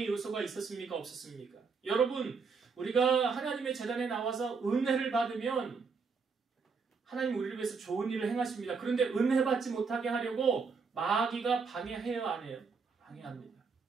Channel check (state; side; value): quieter; left; 5.1 dB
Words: 요소가 있었습니까? 없었습니까? 여러분, 우리가 하나님의 제단에 나와서 은혜를 받으면 하나님 우리를 위해서 좋은 일을 행하십니다. 그런데 은혜 받지 못하게 하려고 마귀가 방해해요, 안 해요? 방해합니다.